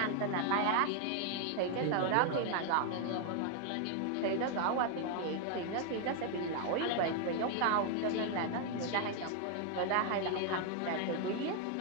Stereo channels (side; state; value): both; different; correlation 0.00